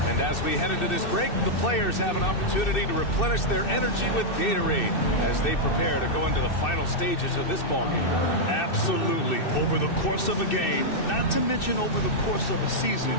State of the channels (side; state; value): right; late; 2.6 ms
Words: And as we head into this break, the players have an opportunity to replenish their energy with Gatorade as they prepare to go into the final stages of this ballgame. Absolutely. Over the course of a game, not to mention over the course of a season, you